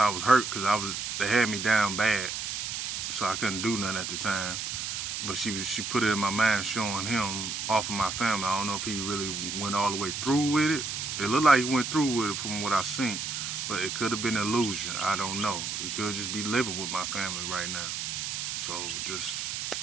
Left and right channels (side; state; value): right; noise; hiss, 4 dB below the sound